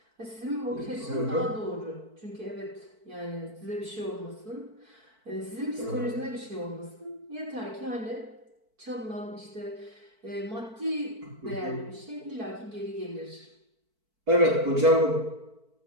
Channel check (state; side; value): late; left; 4.5 ms